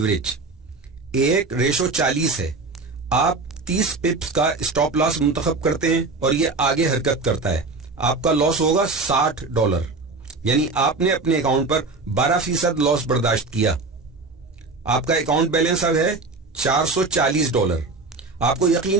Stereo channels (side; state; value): left; quieter; 3.7 dB